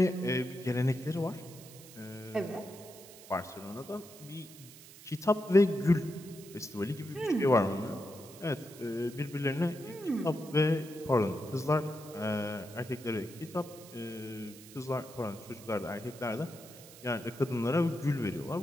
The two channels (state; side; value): noise; right; hiss, 18 dB below the sound